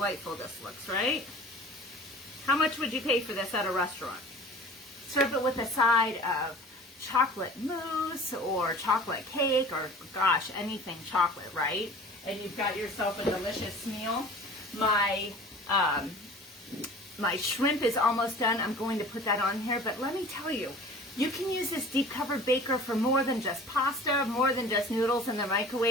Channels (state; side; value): normal; both; correlation 0.43